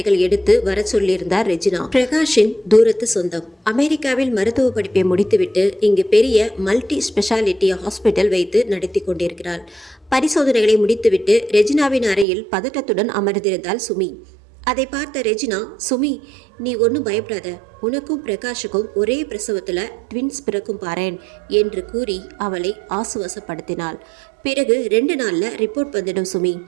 எடுத்து வர சொல்லியிருந்தார் ரெஜினா. பிரகாஷின் தூரத்து சொந்தம். அமெரிக்காவில் மருத்துவ படிப்பை முடித்துவிட்டு இங்கு பெரிய மல்டி ஸ்பெஷாலிட்டி ஹாஸ்பிட்டல் வைத்து நடத்தி கொண்டிருக்கிறாள். பரிசோதனைகளை முடித்துவிட்டு ரெஜினாவின் அறையில் பதட்டத்துடன் அமர்ந்திருந்தாள் சுமி. அதை பார்த்த ரெஜினா, சுமி, நீ ஒன்றும் பயப்படாத, உனக்கும் பிரகாஷுக்கும் ஒரே பிரசவத்தில் ட்வின்ஸ் பிறக்கும் பாரேன் என்று கூறி அவளை ஆசுவாசப்படுத்தினாள். பிறகு 2 நாளில் ரிப்போர்ட் வந்துடும் சுமி,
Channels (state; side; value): drops out; left; at 12.2 s